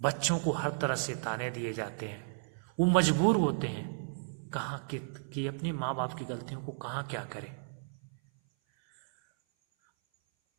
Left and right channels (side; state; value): left; silent; 55 dB below the other